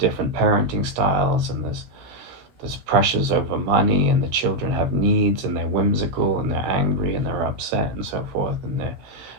parenting styles, and there's pressures over money, and the children have needs, and they're whimsical, and they're angry, and they're upset, and so forth, and they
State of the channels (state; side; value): late; left; 16 ms